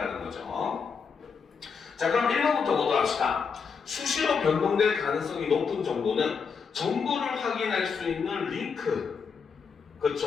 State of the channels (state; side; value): quieter; right; 5.8 dB